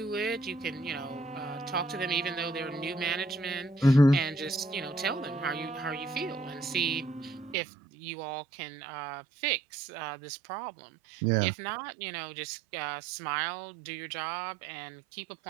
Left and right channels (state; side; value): drops out; left; at 7.6 s